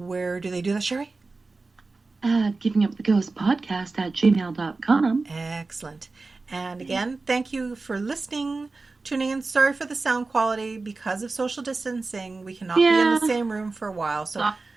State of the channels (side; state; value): left; quieter; 3.7 dB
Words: do they do that, Sherry? Givinguptheghostpodcast at gmail.com. Excellent. And again, thank you for listening, tuning in. Sorry for the sound quality. Because of social distancing, we cannot be in the same room for a while. So